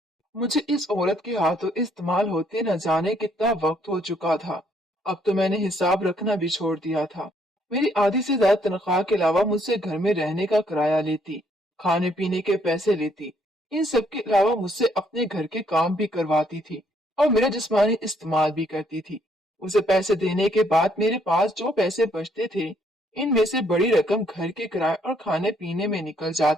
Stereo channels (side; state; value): both; normal; correlation 0.68